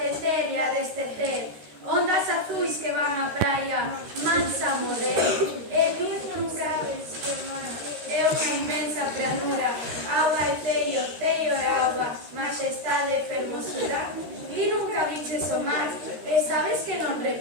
e a destecer, ondas azuis que van á praia, mansa a morrer, e tú nunca ves que o mar é unha inmensa planura, auga e ceio é auga, majestade e fermosura. E nunca viches o mar, e sabes que non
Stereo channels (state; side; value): late; left; 13 ms